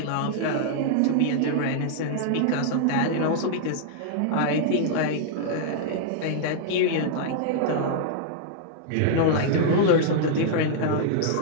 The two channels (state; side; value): different; both; correlation -0.01